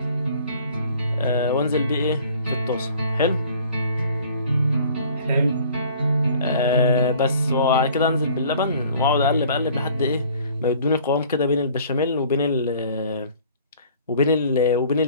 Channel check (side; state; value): both; inverted; correlation -0.52